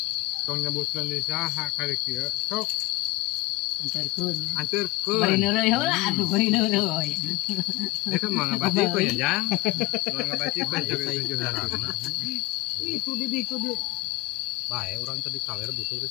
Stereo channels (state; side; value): quieter; right; 19.8 dB